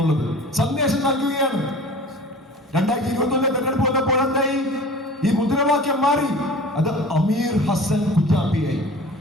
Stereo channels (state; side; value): normal; both; correlation 0.41